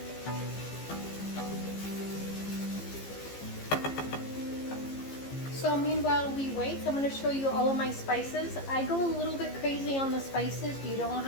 So meanwhile we wait, I'm going to show you all of my spices. I go a little bit crazy on the spices. You don't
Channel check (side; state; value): right; late; 15 ms